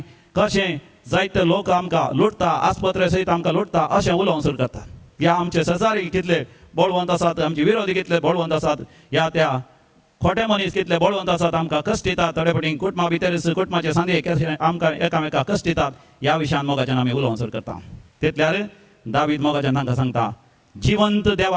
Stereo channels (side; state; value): both; identical; correlation 1.00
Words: कशें जायते लोक आमकां लुटता आस्पत्रे सयत आमकां लुटता अशें उलोवंक सुरू करतात ह्या आमचे शेजारी कितले बळवंत आसात आमचे विरोधी कितले बळवंत आसात ह्या त्या खोटे मनीस कितले बळवंत आसात आमकां कश्ट दितात थोडे फावटी कुटुंबा भितर कुटुंबाचे सांदे आमकां एकामेकाक कश्ट दितात ह्या विशयान मोगाच्यान आमी उलोवंक सुरू करता तितल्यार दावीद मोगाच्यान तांकां सांगता जिवंत